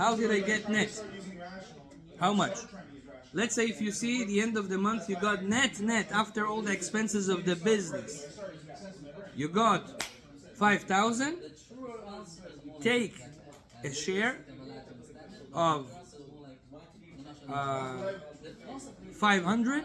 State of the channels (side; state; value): both; identical; correlation 1.00